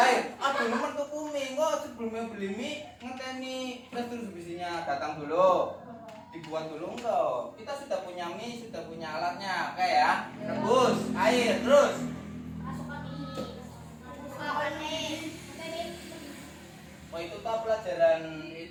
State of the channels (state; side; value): identical; both; correlation 1.00